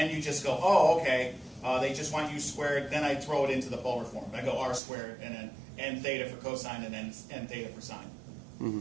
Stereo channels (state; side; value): drops out; left; at 4.8 s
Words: you just go, oh, okay, they just want u squared, then I throw it into the polar form. I go r squared, and then n theta for cosine, and then n theta for sine.